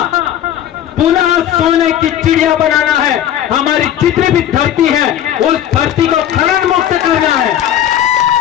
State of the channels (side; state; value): right; quieter; 10.8 dB